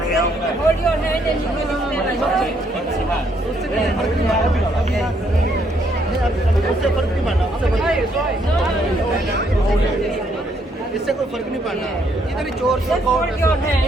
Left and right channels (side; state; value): both; normal; correlation 0.71